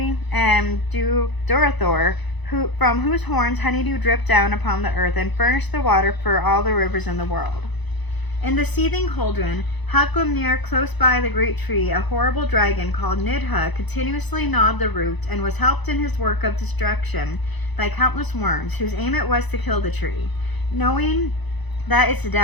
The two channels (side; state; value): right; late; 1.0 ms